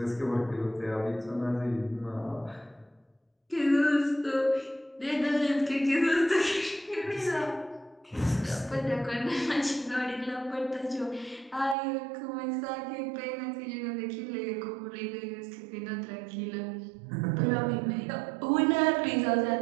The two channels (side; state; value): left; drops out; at 11.8 s